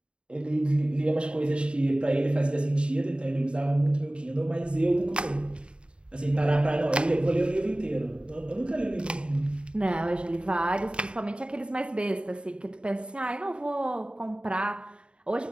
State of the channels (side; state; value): left; late; 0.054 ms